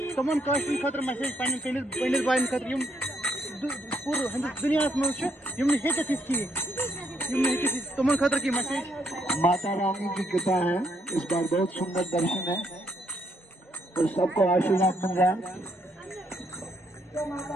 तमन काश्मीर खतर मैसेज पंडित भाई खतर पूरे दुनिया में तमन खतर की मैसेज माता रानी की कृपा है। इस बार बहुत सुंदर दर्शन है और सबको आशीर्वाद मिल रहा है।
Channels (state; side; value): normal; both; correlation 0.73